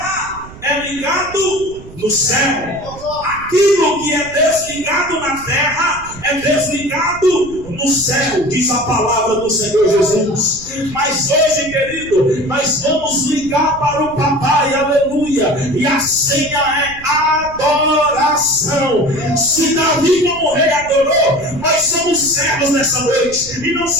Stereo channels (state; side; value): noise; right; rumble, 17 dB below the sound